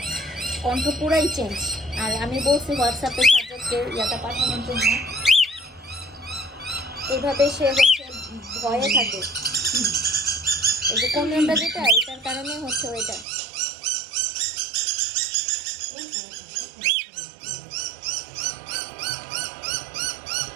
কণ্ঠ পুরাই চেঞ্জ। আর আমি বলছি হোয়াটসঅ্যাপে সাবজেক্টকে ইয়াটা পাঠানোর জন্য, এইভাবে সে হচ্ছে ভয়ে থাকে। এই যে কমিউনটা যেটা, এটার কারণে হচ্ছে ওইটা।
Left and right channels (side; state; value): left; drops out; at 13.2 s